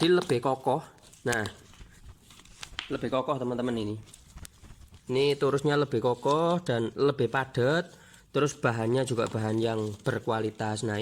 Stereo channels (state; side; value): identical; both; correlation 1.00